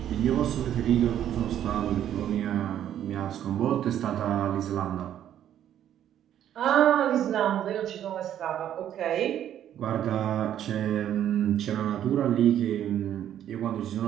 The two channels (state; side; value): quieter; left; 10.7 dB